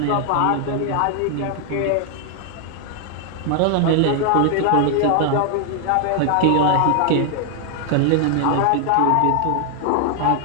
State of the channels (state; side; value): different; both; correlation 0.00